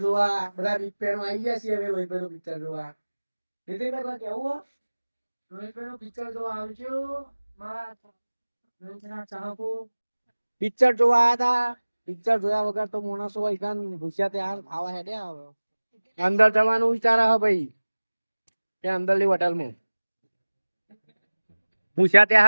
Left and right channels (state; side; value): inverted; both; correlation -1.00